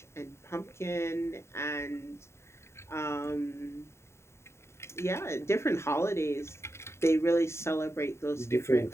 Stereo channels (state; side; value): late; right; 0.13 ms